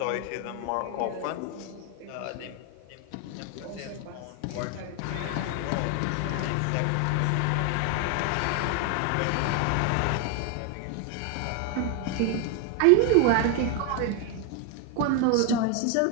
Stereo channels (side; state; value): both; different; correlation 0.01